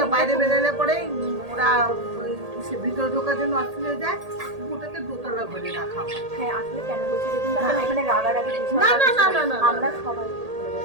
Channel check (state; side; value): late; left; 1.8 ms